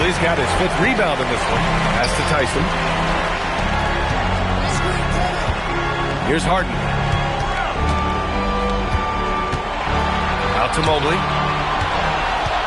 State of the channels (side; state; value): both; identical; correlation 1.00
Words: got his 5th rebound in this one. Pass to Tyson. Here's Harden. Out to Mobley.